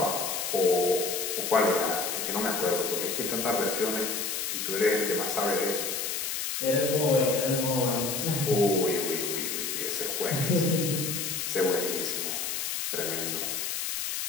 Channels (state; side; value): noise; left; hiss, 2 dB below the sound